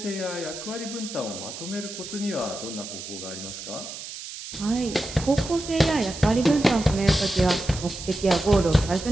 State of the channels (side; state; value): right; noise; hiss, 10 dB below the sound